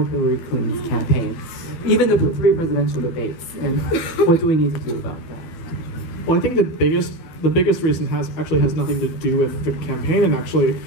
Hillary Clinton's campaign? Even the three presidential debates. And what do we need to do about that? Well, I think the biggest reason has nothing to do with the campaign and actually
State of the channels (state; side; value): late; right; 12 ms